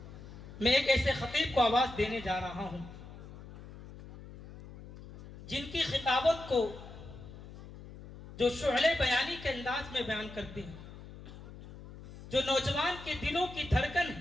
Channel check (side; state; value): left; noise; hum, 15 dB below the sound